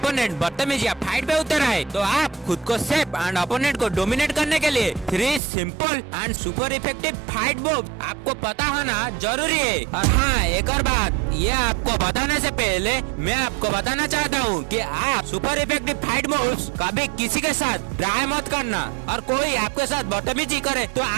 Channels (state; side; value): drops out; left; at 5.4 s